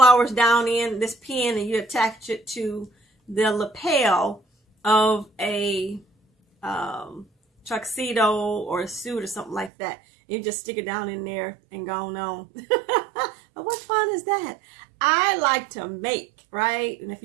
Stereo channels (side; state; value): left; drops out; at 9.7 s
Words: down in this pin and you attach it to the lapel of a tuxedo or a suit or something like that. You just stick it down in there and go on. What fun is that? I like to make, right? And if